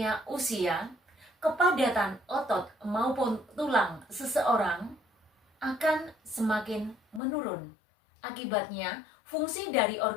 usia, kepadatan otot maupun tulang seseorang akan semakin menurun. Akibatnya, fungsi dari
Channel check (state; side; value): drops out; right; at 7.2 s